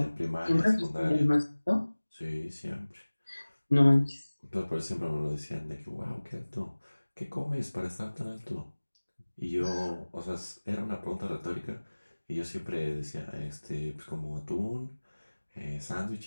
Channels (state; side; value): inverted; both; correlation -1.00